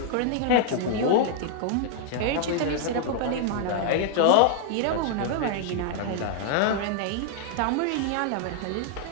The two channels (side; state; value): both; different; correlation -0.01